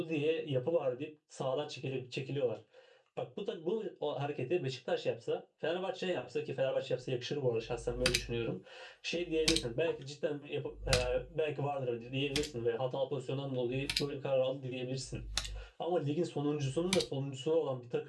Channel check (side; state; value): both; identical; correlation 1.00